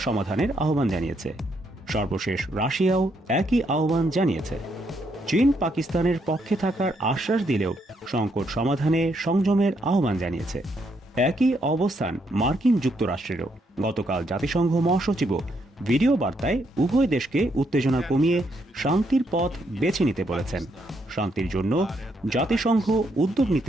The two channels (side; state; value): both; normal; correlation 0.75